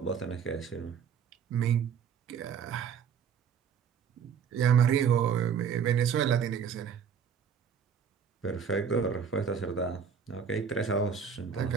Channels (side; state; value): left; quieter; 7.1 dB